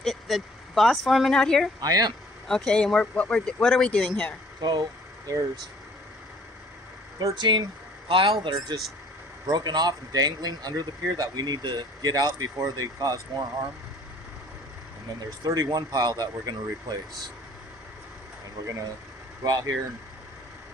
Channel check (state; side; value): normal; both; correlation 0.55